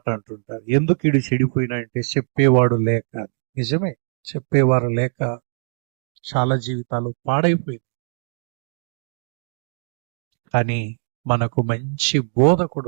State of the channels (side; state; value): left; silent; digital silence